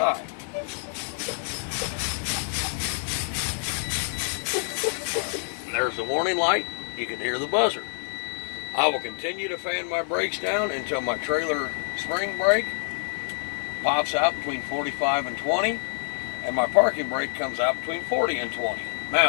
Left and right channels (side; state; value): right; silent; digital silence